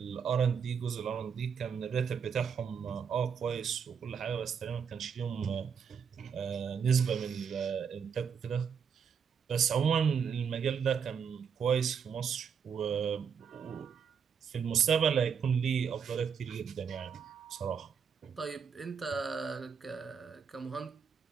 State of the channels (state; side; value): quieter; left; 6.9 dB